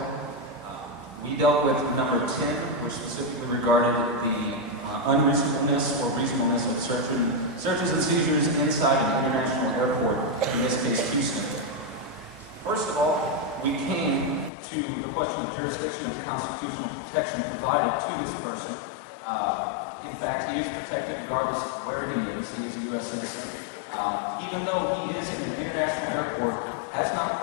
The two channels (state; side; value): drops out; right; at 14.5 s